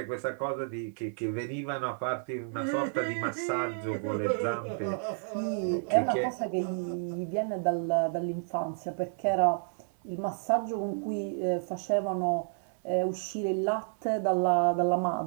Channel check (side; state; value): left; silent; 57 dB below the other